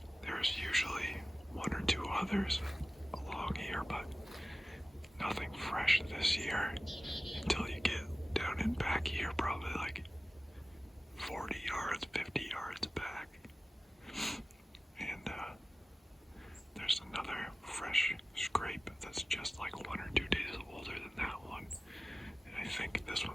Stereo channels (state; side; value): normal; both; correlation 0.97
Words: there's usually 1 or 2 others along here, but nothing fresh this year until you get down and back here, probably like 40 yards, 50 yards back. And there's another fresh scrape that's just like 1 or 2 days older than that one. And I think this